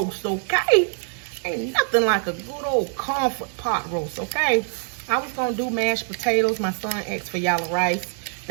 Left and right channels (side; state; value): left; silent; 56 dB below the other